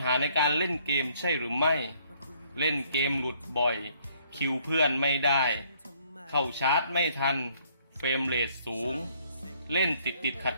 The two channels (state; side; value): inverted; both; correlation -0.65